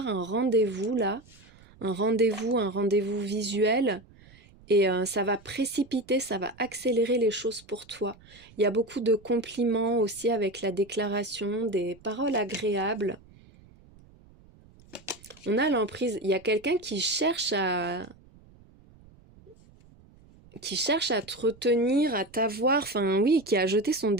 un rendez-vous là, un rendez-vous visuel. Et ça va précipiter, ça va accélérer les choses pour toi. Il y a beaucoup de compliments aussi avec la déclaration, des paroles agréables. On a l'emprise. Il y a quelqu'un qui cherche à te retenir, à t'avoir, enfin oui, qui a jeté son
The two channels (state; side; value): noise; right; rumble, 26 dB below the sound